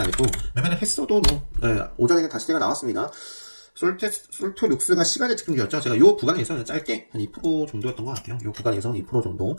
했고 매매를 했어도 뭐 오전에는 다시 제가 나왔습니다. 솔토룩스가 시간의 특징이었죠. 제가 요 구간에서 짧게 한 2% 정도였던 것 같아요. 요 구간에서 2% 정도,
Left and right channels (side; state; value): both; inverted; correlation -1.00